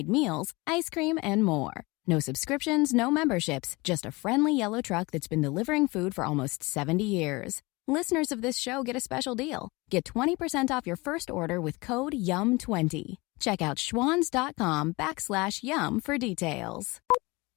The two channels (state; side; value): quieter; right; 24.1 dB